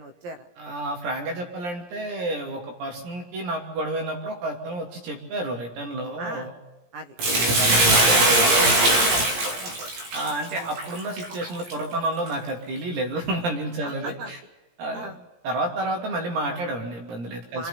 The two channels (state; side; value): late; left; 17 ms